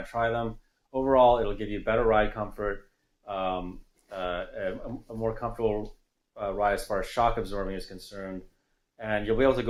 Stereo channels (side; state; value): both; identical; correlation 1.00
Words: to try them. Overall, it'll give you better ride comfort, a more comfortable ride as far as shock absorbing is concerned. And you'll be able to